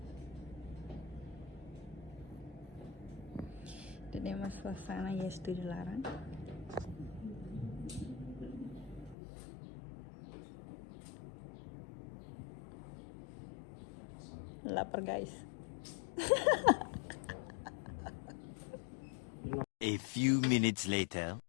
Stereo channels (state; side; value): drops out; right; at 9.2 s